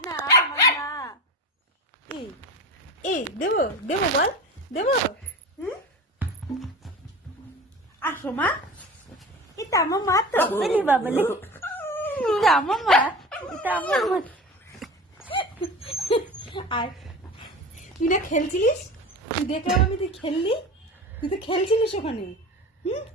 না আমার মা। এই এই দেবো দেবো বল, দেবো। আসো মা, এটা আমার মা তো। বাবলে এটা আমার মা, এটা আমার মা। আর তুই না খেলছিলিস, তুই দেখলাম আমি তুই খেললি, তুই তো খেলছিলিস ওখানে।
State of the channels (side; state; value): both; normal; correlation 0.32